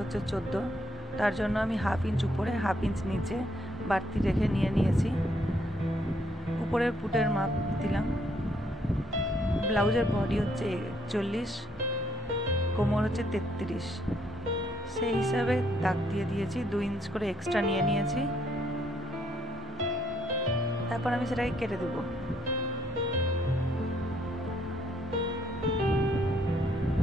হচ্ছে 14, তার জন্য আমি হাফ ইঞ্চ উপরে হাফ ইঞ্চ নিচে বাড়তি রেখে নিয়েছি। উপরের পুটের মাপ দিলাম। ব্লাউজের বডি হচ্ছে 41, কোমর হচ্ছে 33, সেই হিসাবে দাগ দিয়ে দিয়েছি। 2 ইঞ্চ করে এক্সট্রা নিয়েছি। তারপর আমি সেটাকে কেটে দেব।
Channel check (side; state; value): both; normal; correlation 0.70